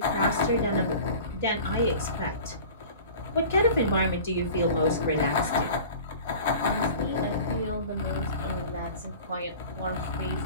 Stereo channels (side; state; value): both; inverted; correlation -0.40